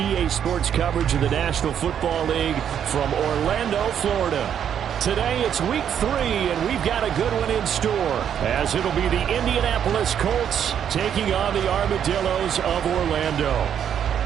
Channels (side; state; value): left; quieter; 8.9 dB